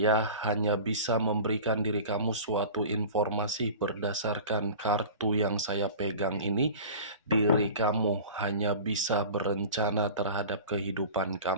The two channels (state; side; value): inverted; both; correlation -0.37